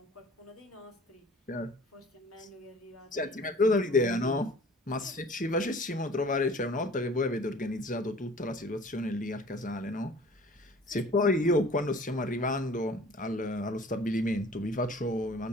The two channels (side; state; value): both; normal; correlation 0.48